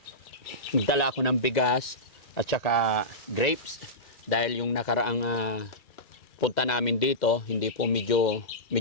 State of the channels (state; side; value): late; right; 2.3 ms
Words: nagdala ako ng bigas at saka grapes dahil yung nakaraang punta namin dito hindi po medyo